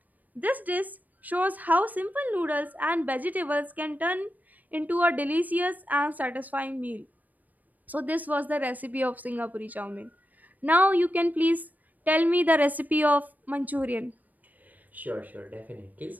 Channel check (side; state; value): left; late; 0.081 ms